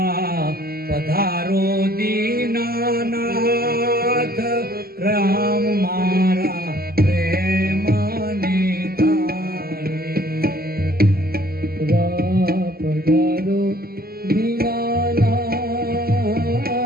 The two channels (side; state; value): left; late; 0.44 ms